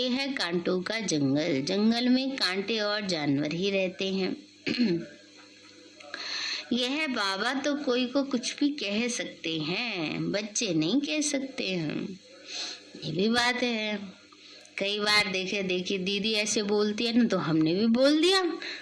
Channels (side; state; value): both; identical; correlation 1.00